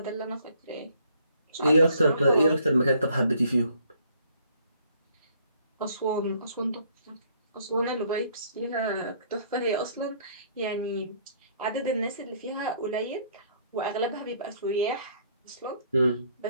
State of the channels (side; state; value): both; inverted; correlation -0.64